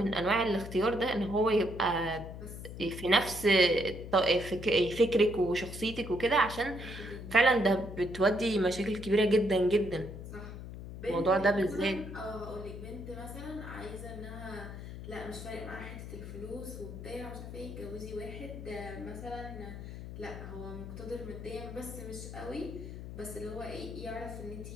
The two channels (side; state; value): left; noise; hum, 10 dB below the sound